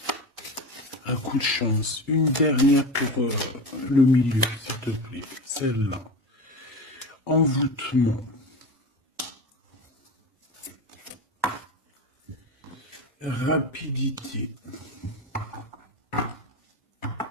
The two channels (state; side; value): normal; both; correlation 0.26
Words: Un coup de chance. Une dernière pour le milieu, s'il te plaît. Celle-là. Envoûtement. Rapidité.